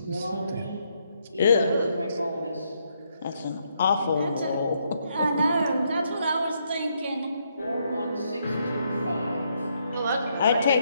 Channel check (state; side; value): inverted; both; correlation -0.75